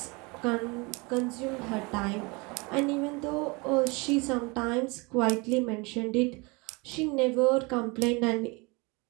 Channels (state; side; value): quieter; left; 27.6 dB